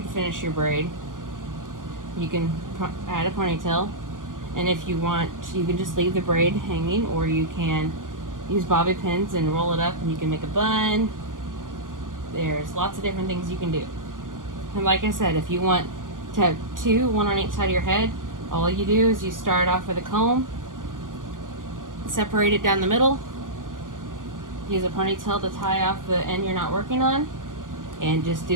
finish your braid, you can add a ponytail, And if you want, you can just leave the braid hanging, or you can use bobby pins and roll it up and you can make a bun. There's lots of different things you can do. And like I said, if you want to have two, one on each side of your head, all you do is you start off with a comb, separate it down the middle, use a ponytail to tie off the end you're not working on, and just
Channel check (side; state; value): left; late; 0.89 ms